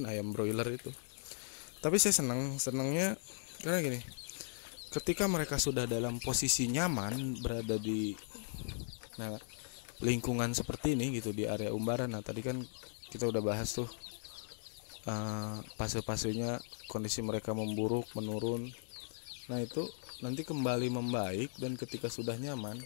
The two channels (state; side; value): silent; right; digital silence